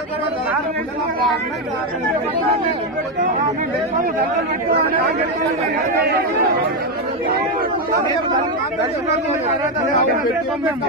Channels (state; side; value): normal; both; correlation 0.07